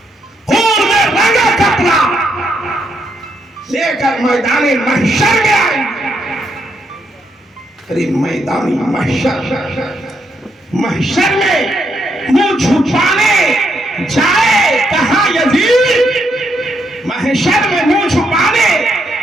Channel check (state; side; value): normal; both; correlation 0.77